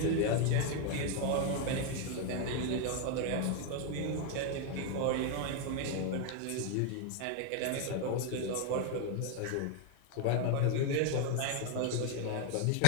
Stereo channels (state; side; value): different; both; correlation 0.01